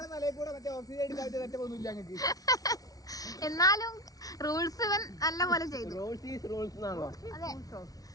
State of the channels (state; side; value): late; right; 0.18 ms